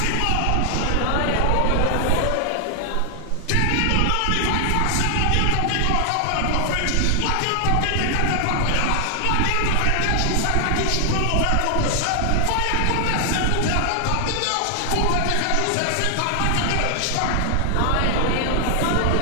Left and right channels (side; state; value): both; different; correlation 0.00